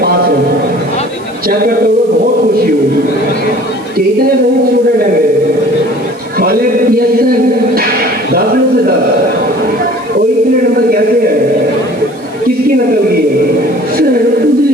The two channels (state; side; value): noise; right; hiss, 26 dB below the sound